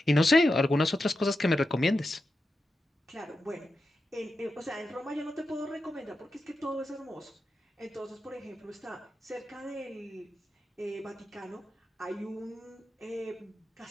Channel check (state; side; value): normal; both; correlation 0.89